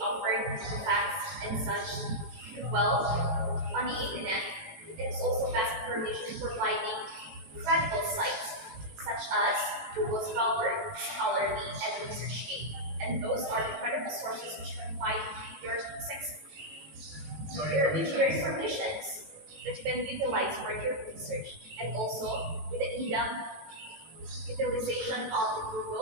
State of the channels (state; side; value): late; left; 18 ms